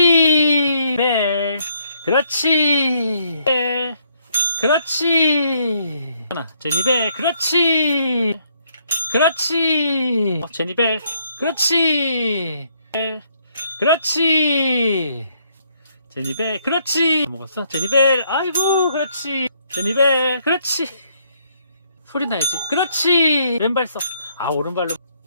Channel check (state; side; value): inverted; both; correlation -0.70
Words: 벨. 그렇지. 벨. 그렇지. 하나, 제니벨. 그렇지. 그렇지. 제니벨. 그렇지. 벨. 그렇지. 제니벨. 그렇지. 먹었어? 제니벨. 아이고, 그렇지. 제니벨. 그렇지. 소리 나야지. 그렇지. 왼발 써. 아, 오른발로.